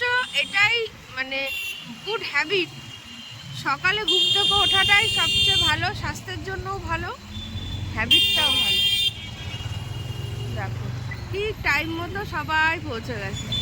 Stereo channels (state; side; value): identical; both; correlation 1.00